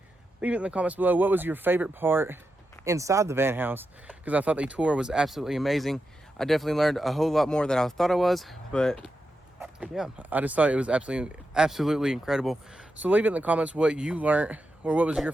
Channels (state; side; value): normal; both; correlation 0.88